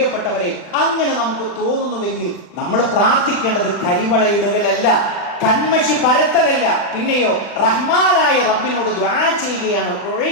അങ്ങനെ നമുക്ക് തോന്നുന്നുവെങ്കിൽ നമ്മൾ പ്രാർത്ഥിക്കേണ്ടത് കരിവളയിടുകയല്ല, കന്മഷി പരത്തലല്ല, പിന്നെയോ റഹ്മാനായ റബ്ബിനോട് ദുആ ചെയ്യുകയാണ്.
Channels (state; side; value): late; right; 40 ms